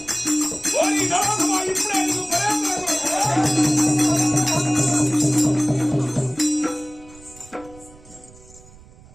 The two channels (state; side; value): noise; right; rumble, 23 dB below the sound